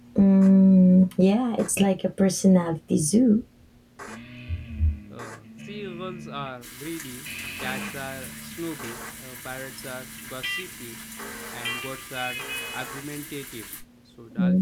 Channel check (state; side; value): identical; both; correlation 1.00